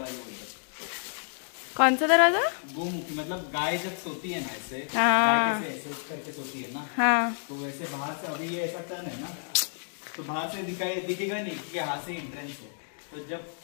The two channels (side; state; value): right; silent; digital silence